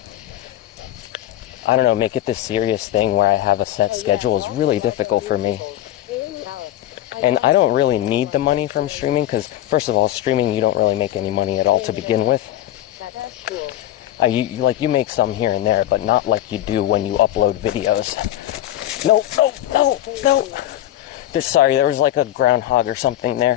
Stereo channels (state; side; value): quieter; right; 13.4 dB